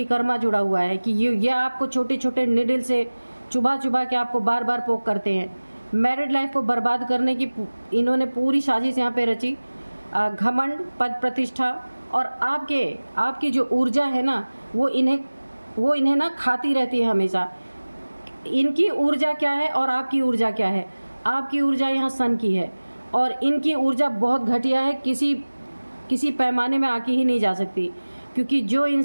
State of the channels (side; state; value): both; inverted; correlation -1.00